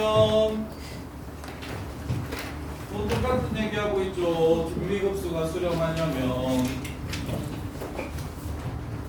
또 똑같은 얘기하고 있죠. 등비급수가 수렴하려면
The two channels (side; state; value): both; identical; correlation 1.00